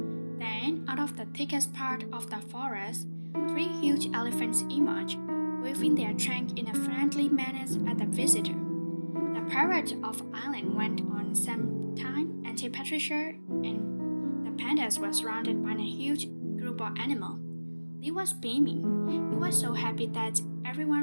Then, out of the thickest part of the forest, three huge elephants emerged, waving their trunk in a friendly manner at the visitor. The parade of island went on some time until Patricia and the pandas were surrounded by a huge group of animals. Lee was beaming. He was so happy that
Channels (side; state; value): both; inverted; correlation -1.00